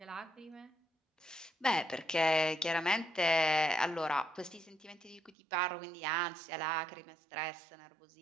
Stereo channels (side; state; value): left; drops out; at 5.4 s